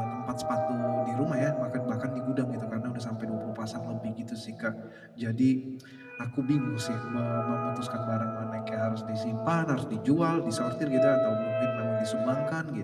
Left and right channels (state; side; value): identical; both; correlation 1.00